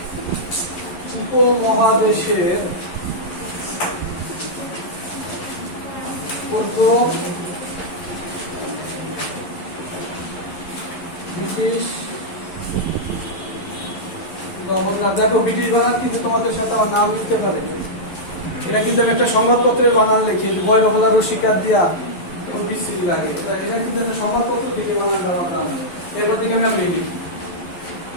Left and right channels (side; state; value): right; late; 11 ms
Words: উপমহাদেশের প্রথম ব্রিটিশ গভর্নর। দেখো ব্রিটিশ বানান কিন্তু তোমাদের সাথে আমার নাম লিখতে পারে, এটা কিন্তু আমি একটা সংবাদপত্রের বানান লিখি, বয়রহলা রসিকার দিয়া বিস্তৃতি লাগে, এটা কিন্তু একটা সংবাদপত্র থেকে বানান দেওয়ার নাম, এরপর থেকে আমি লিখি